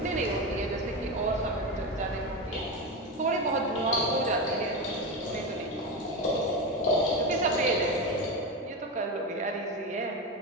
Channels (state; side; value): normal; both; correlation 0.17